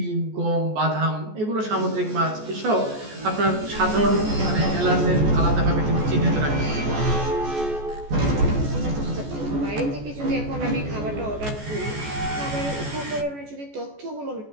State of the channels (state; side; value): late; left; 14 ms